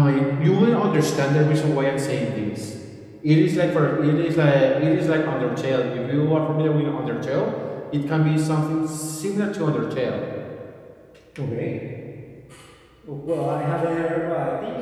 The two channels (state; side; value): identical; both; correlation 1.00